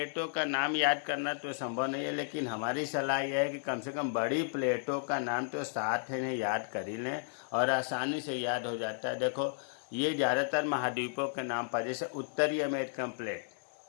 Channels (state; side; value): silent; right; 55 dB below the other